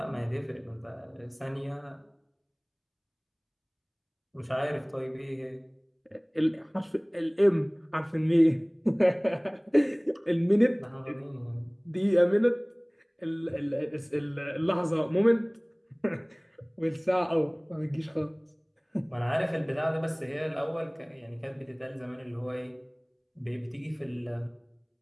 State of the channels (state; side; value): identical; both; correlation 1.00